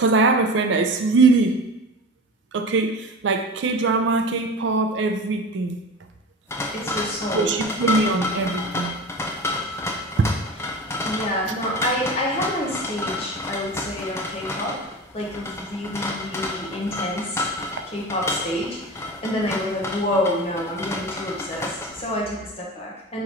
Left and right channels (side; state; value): both; normal; correlation 0.31